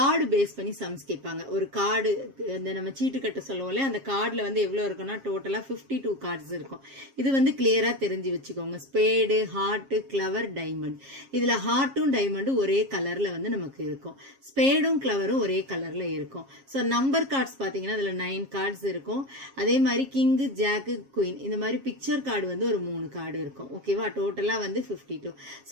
பேஸ் பண்ணி சம்ஸ் கேட்பாங்க. ஒரு கார்டு இந்த நம்ம சீட்டு கட்ட சொல்லுவோம் இல்லையா, அந்த கார்டில் வந்து எவ்வளோ இருக்குன்னா டோட்டலாக 52 கார்ட்ஸ் இருக்கும். இது வந்து கிளியராக தெரிஞ்சு வச்சுக்கோங்க. Spade, heart, clever, diamond. இதில் ஹார்ட்டும் டைமண்டும் ஒரே கலரில் வந்து நமக்கு இருக்கும். ஸ்பேடும் கிளவரும் ஒரே கலரில் இருக்கும். ஸோ நம்பர் கார்ட்ஸ் பார்த்தீங்கன்னா அதில் 9 கார்ட்ஸ் இருக்கும். அதே மாதிரி கிங்கு, ஜாக்கு, குயின் இந்த மாதிரி பிக்சர் கார்டு வந்து ஒரு 3 கார்டு இருக்கும். ஓகேவா, டோட்டலாக வந்து 52.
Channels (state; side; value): late; left; 7.4 ms